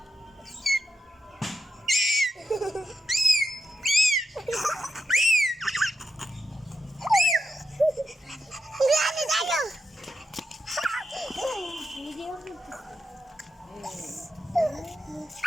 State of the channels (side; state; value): both; normal; correlation 0.86